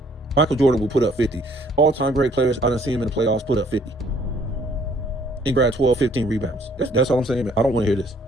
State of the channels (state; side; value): normal; both; correlation 0.61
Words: Michael Jordan will put up 50. All-time great players, I done see him in the playoffs put up 50. And grab 12, 15 rebounds. That's all I'm saying. I don't want to hear this.